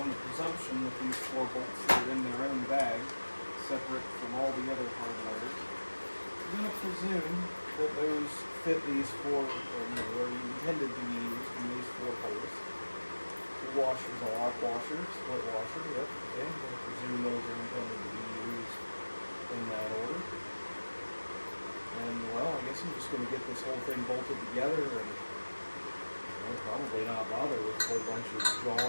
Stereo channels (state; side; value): inverted; both; correlation -1.00